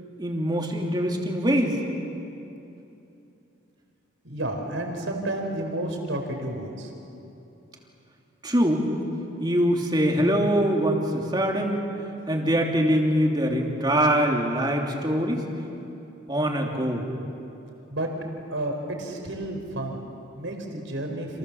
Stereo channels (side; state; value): both; normal; correlation 0.61